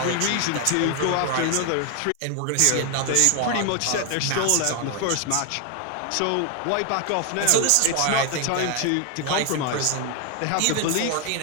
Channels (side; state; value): both; different; correlation 0.01